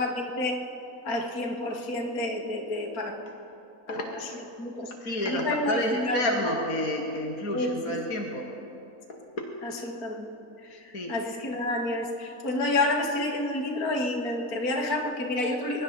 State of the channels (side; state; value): right; late; 4.4 ms